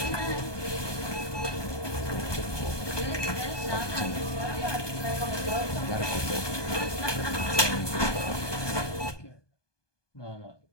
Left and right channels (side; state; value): right; late; 1.2 ms